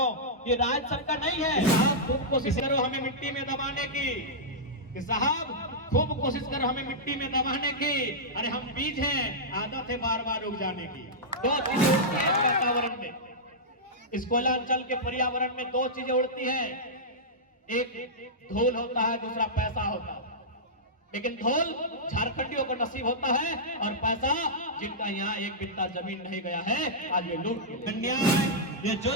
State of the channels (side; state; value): both; normal; correlation -0.12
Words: ये राज्य सबका नहीं है। साहब खूब कोशिश करो हमें मिट्टी में दबाने की, कि साहब खूब कोशिश करो हमें मिट्टी में दबाने की। अरे हम बीज हैं, आदत है बार बार उग जाने की। दो चीजें उड़ती है इस वातावरण में, इस कोयलांचल के पर्यावरण में दो चीजें उड़ती है, एक धूल होता है, दूसरा पैसा होता है। लेकिन धूल झारखंडियों को नसीब होता है और पैसा जिनका यहाँ एक बित्ता जमीन नहीं गया है, आज ये लूट अन्याय, ये